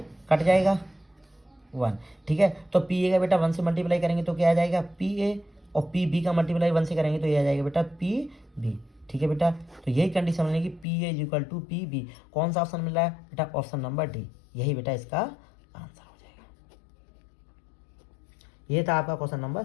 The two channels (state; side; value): drops out; right; at 10.9 s